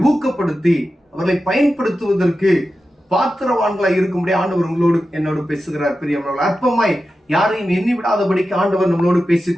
ஊக்கப்படுத்தி அவர்களை பயன்படுத்துவதற்கு பாத்திரவான்களாய் இருக்கும்படி ஆண்டவர் என்னோடு பேசுகிறார். பிரியமானவர்களே, அற்பமாய் யாரையும் எண்ணி விடாதபடிக்கு ஆண்டவர் நம்மளோடு பேசிக்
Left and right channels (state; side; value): normal; both; correlation 0.92